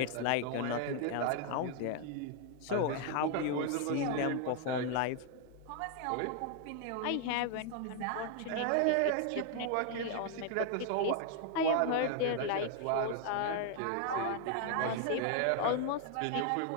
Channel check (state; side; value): different; both; correlation 0.00